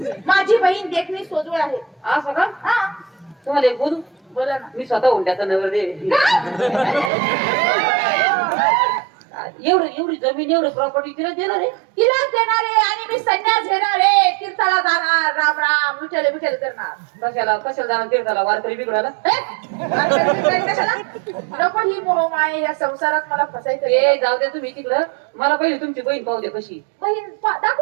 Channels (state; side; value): drops out; left; at 7.1 s